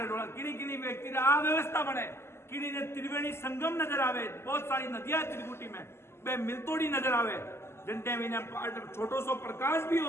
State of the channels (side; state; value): right; late; 0.12 ms